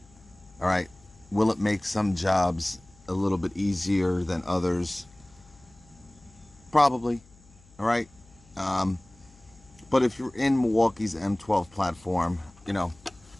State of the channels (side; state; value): left; noise; hum, 27 dB below the sound